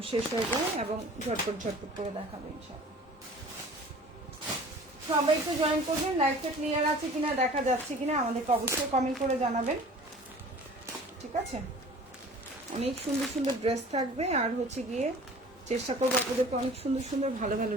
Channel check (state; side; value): normal; both; correlation 0.45